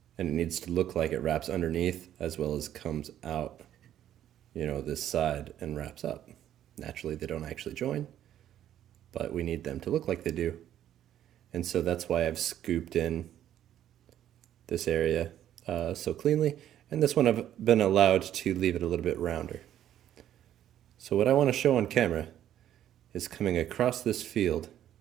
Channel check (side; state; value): left; quieter; 11.2 dB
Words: and it needs to look like it wraps underneath as well as comes out, this side and wraps up. Naturally, they don't actually join, but we need them to look like they do. And so that's why I've scooped in this area so cleanly, and this one I've been allowed to leave it a little bit rounder. So what I want to show on camera is coming across this field.